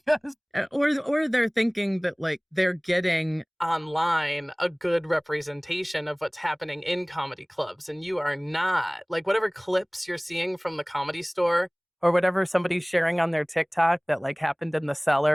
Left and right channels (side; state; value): both; identical; correlation 1.00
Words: or they're thinking that like they're getting online a good representation of what's happening in comedy clubs. And you are not. Like whatever clips you're seeing from the Comedy Store or whatever somebody's sharing on their TikTok that like happened in the